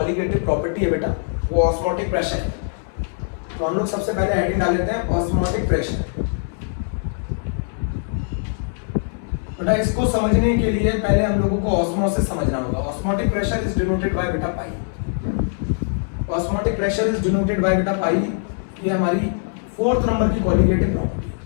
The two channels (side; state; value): right; silent; digital silence